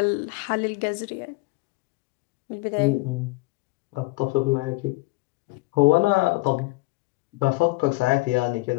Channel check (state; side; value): quieter; right; 21.9 dB